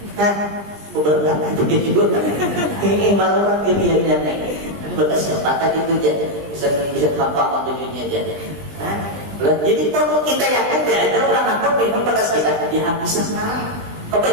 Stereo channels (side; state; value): left; late; 20 ms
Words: beberapa itu juga ini malah kejadian berkesempatan itu jadi bisa tampak tujuannya jadi. Jadi kalau kita yakin ada orang apa minum bekas kita dia habis sekarang.